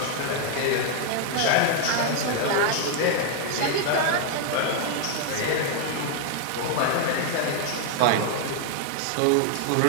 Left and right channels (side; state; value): both; different; correlation 0.00